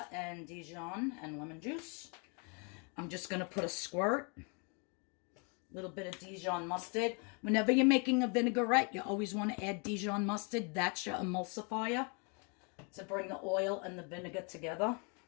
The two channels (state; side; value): quieter; right; 35.3 dB